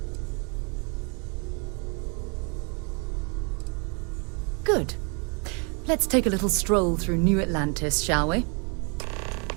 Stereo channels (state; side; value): quieter; left; 35.1 dB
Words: Good. Let's take a little stroll through New Atlantis, shall we?